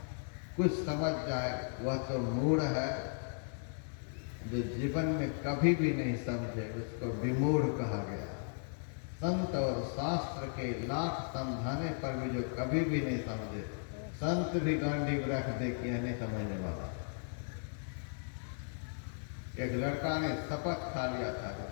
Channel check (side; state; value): right; silent; digital silence